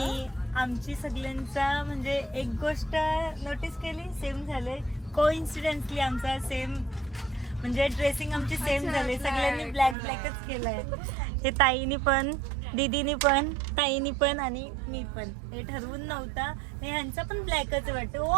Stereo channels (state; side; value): drops out; left; at 10.0 s